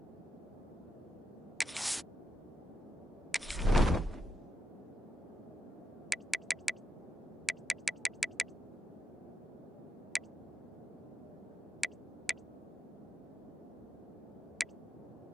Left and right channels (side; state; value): both; normal; correlation 0.84